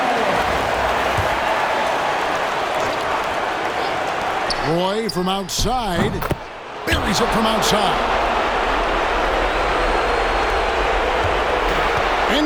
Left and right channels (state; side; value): identical; both; correlation 1.00